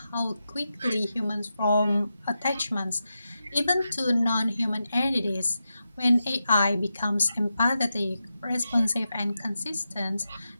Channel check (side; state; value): both; inverted; correlation -0.89